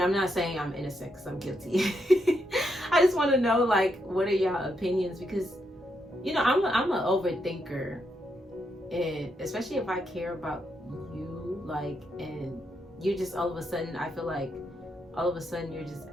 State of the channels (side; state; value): both; normal; correlation 0.80